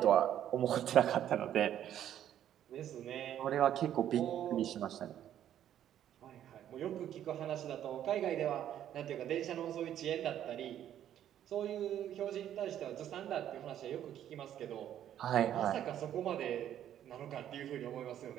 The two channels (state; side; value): quieter; left; 10.9 dB